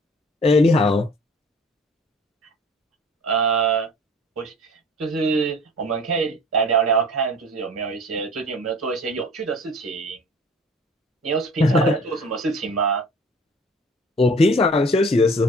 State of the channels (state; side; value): normal; both; correlation 0.47